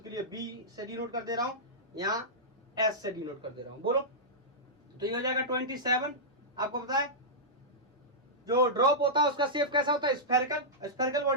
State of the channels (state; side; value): normal; both; correlation -0.12